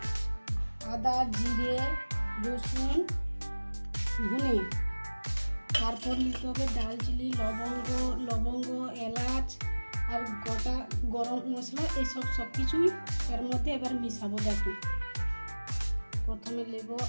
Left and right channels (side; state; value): both; inverted; correlation -1.00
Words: আদা, জিরে, রসুন, ধনে। তারপর নিতে হবে দারচিনি, লবঙ্গ, এলাচ আর গোটা গরম মশলা। এইসব সব কিছুই এর মধ্যে এবার মিশাবো। দেখো প্রথমে নেব